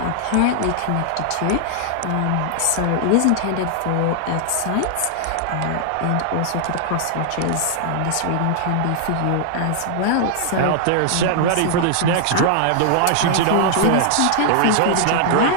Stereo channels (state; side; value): different; both; correlation 0.00